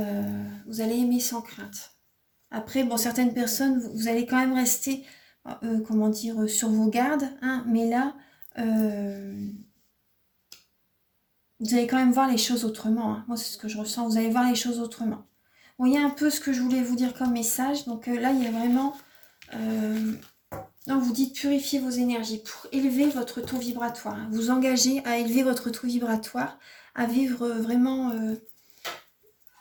allez aimer sans crainte. Après, bon, certaines personnes, vous allez quand même rester... comment dire, sur vos gardes, hein, mais là, vous allez quand même voir les choses autrement. Hein. Moi, c'est ce que je ressens. Vous allez voir les choses autrement. Bon, il y a un peu ce que je voulais vous dire comme message. Donc là, il y a vraiment... on vous dit de purifier vos énergies pour élever votre taux vibratoire. Vous engagez à élever votre taux vibratoire, à vivre vraiment...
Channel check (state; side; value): identical; both; correlation 1.00